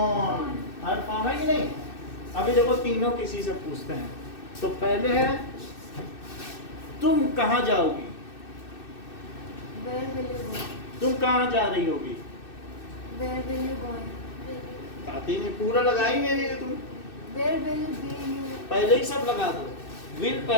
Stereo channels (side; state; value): right; late; 2.6 ms